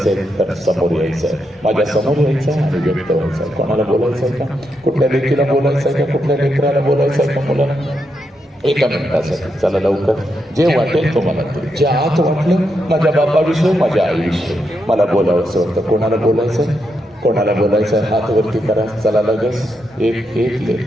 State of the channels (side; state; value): both; normal; correlation 0.83